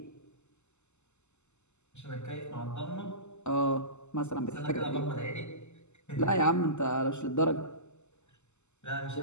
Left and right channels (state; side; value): late; right; 0.83 ms